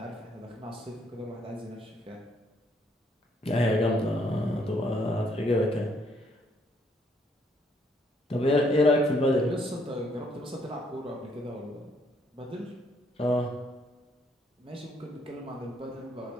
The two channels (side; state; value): both; normal; correlation 0.69